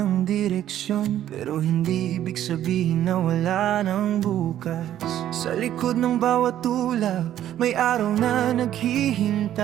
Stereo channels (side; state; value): left; quieter; 11.7 dB